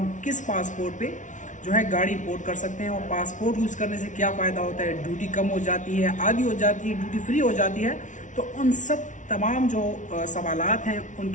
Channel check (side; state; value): right; late; 0.37 ms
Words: किस पासपोर्ट पे जो है गाड़ी इंपोर्ट कर सकते हैं, और पासपोर्ट यूज़ करने से क्या फ़ायदा होता है, ड्यूटी कम हो जाती है, आधी हो जाती है, ड्यूटी फ्री हो जाती है। तो उन सब तमाम जो सवालात हैं